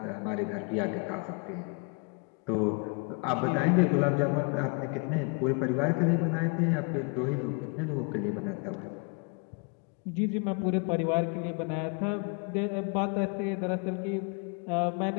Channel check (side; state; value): right; quieter; 34.9 dB